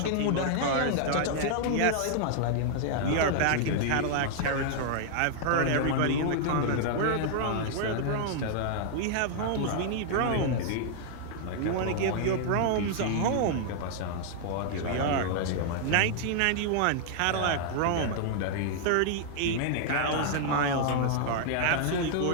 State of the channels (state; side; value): different; both; correlation -0.01